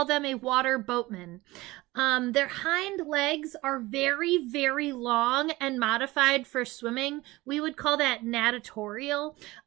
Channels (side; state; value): left; quieter; 19.9 dB